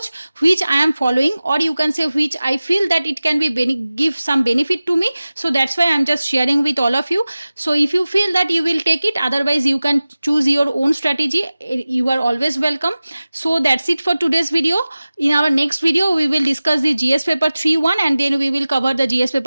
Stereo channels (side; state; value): both; inverted; correlation -0.97